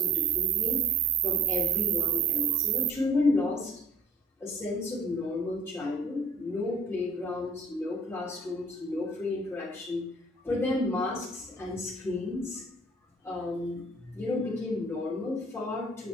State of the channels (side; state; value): both; normal; correlation 0.52